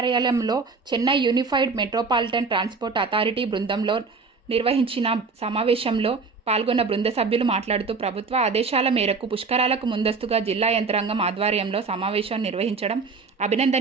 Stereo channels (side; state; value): left; quieter; 4.5 dB